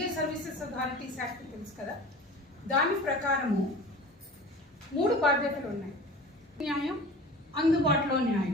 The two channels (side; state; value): both; normal; correlation 0.39